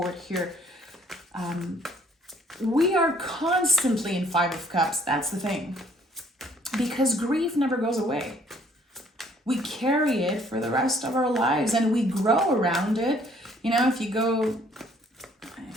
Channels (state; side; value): normal; both; correlation 0.61